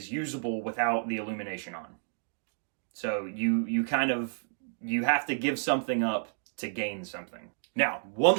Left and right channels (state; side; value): silent; left; digital silence